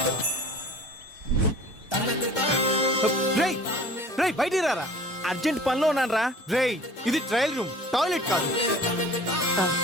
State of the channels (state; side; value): normal; both; correlation 0.45